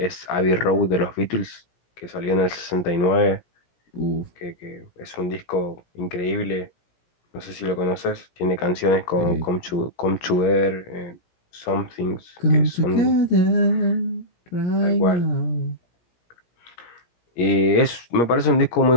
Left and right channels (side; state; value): right; late; 17 ms